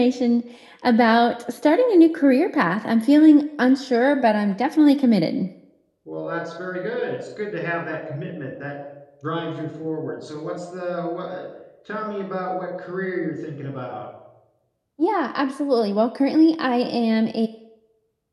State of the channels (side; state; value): both; identical; correlation 1.00